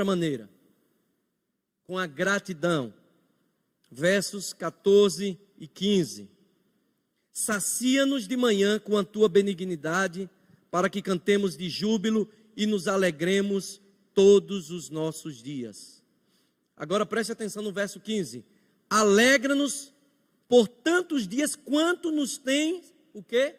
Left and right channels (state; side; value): identical; both; correlation 1.00